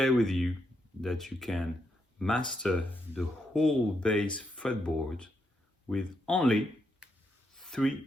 with you that you can master the whole bass fretboard with only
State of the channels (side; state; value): both; normal; correlation 0.80